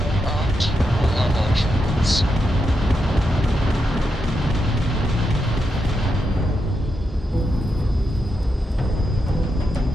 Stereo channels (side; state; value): both; normal; correlation 0.84